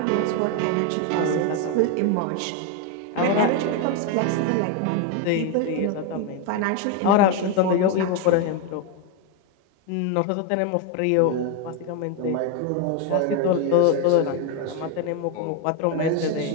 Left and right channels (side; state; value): both; different; correlation 0.02